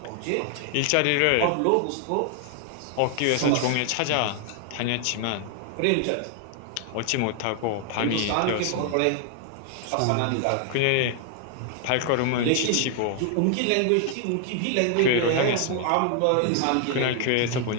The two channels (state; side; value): different; both; correlation 0.00